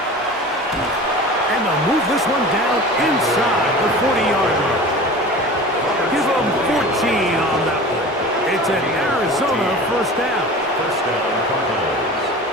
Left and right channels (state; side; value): normal; both; correlation 0.37